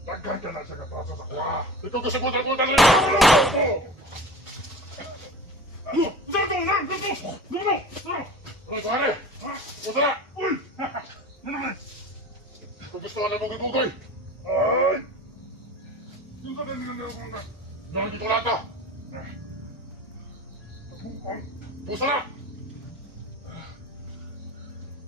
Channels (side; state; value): both; normal; correlation 0.36